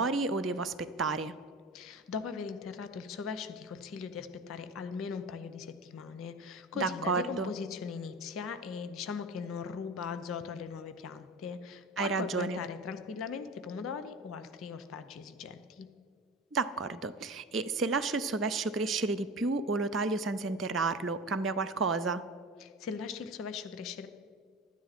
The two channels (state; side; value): normal; both; correlation 0.31